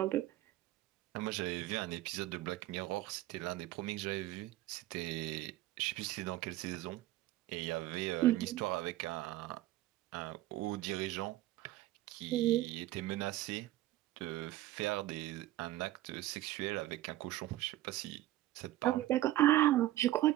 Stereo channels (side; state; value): left; quieter; 15.3 dB